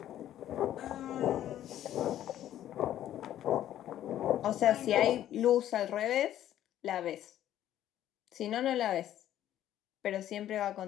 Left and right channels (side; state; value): right; quieter; 12.0 dB